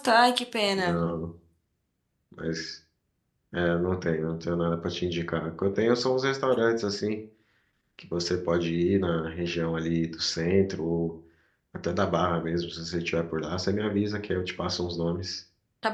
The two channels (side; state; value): both; identical; correlation 1.00